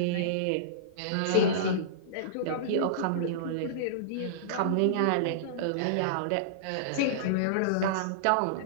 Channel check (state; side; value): different; both; correlation -0.03